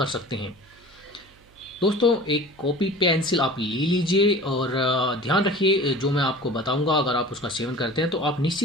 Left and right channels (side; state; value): right; noise; hum, 29 dB below the sound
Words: सकते हैं। दोस्तों, एक कॉपी पेंसिल आप ले लीजिए और ध्यान रखिए जो मैं आपको बताऊंगा, अगर आप उसका सेवन करते हैं तो आप